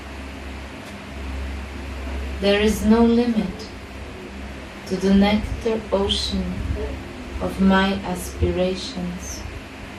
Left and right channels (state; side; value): identical; both; correlation 1.00